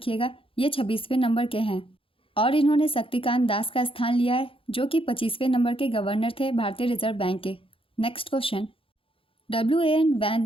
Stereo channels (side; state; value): right; late; 0.26 ms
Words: ये 26वें नंबर के हैं और इन्होंने शक्तिकांत दास का स्थान लिया है जो कि 25वें नंबर के गवर्नर थे भारतीय रिजर्व बैंक के। नेक्स्ट क्वेश्चन,